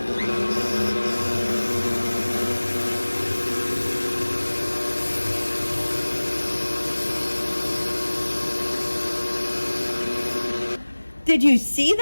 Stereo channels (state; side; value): inverted; both; correlation -1.00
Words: Did you see